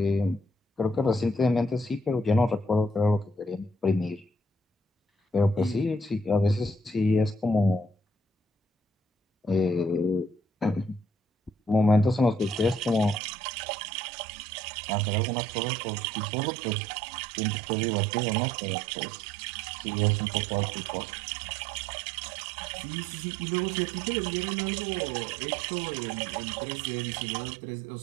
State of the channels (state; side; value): drops out; left; at 13.2 s